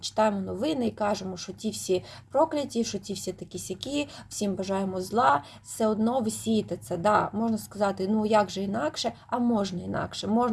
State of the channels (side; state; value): both; identical; correlation 1.00